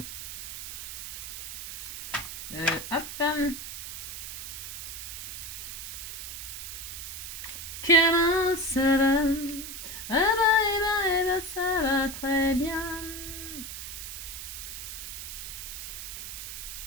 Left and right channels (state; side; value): noise; right; hiss, 8 dB below the sound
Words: Hop. Comment ça va? Ça va très bien.